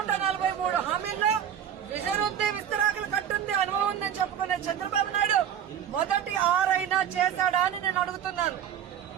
హామీల్లో విజన్ ఉంది, విస్తరాకులు కట్టుంది, అనుభవం ఉందని చెప్పుకునే చంద్రబాబు నాయుడు మొదటి 6 అయినా చేశాడా అని నేను అడుగుతున్నాను.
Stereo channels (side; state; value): left; quieter; 9.4 dB